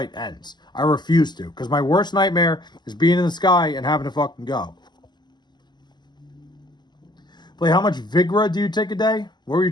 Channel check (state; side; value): late; right; 0.21 ms